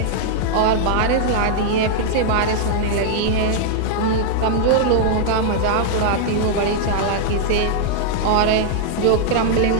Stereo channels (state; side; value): different; both; correlation -0.01